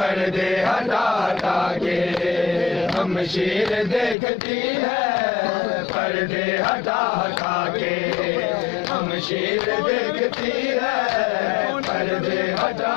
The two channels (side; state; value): right; drops out; at 4.2 s